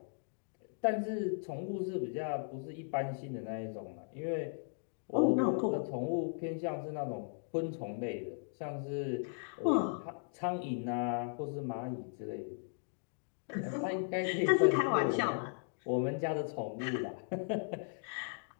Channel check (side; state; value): right; silent; digital silence